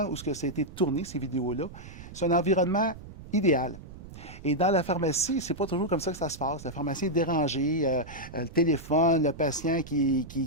où ça a été tourné, ces vidéos-là, c'est un environnement idéal. Et dans la pharmacie, c'est pas toujours comme ça que ça se passe. La pharmacie est dérangée, le téléphone, le patient qui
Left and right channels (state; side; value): noise; right; rumble, 15 dB below the sound